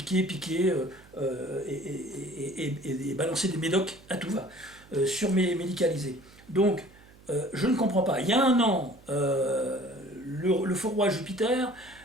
et balancer des médocs à tout va, surmédicalisés. Donc je ne comprends pas. Il y a 1 an, le faux roi Jupiter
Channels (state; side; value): noise; right; hum, 25 dB below the sound